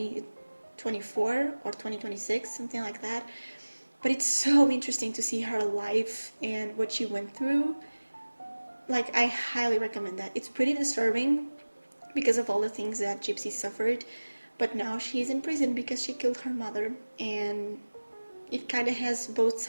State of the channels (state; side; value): inverted; both; correlation -1.00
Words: or 2026, something like that. But it's so interesting to see her life and what she went through. Like, I highly recommend that. It's pretty disturbing because of all the things that Gypsy suffered, but now she's in prison because she killed her mother, and it kind of has both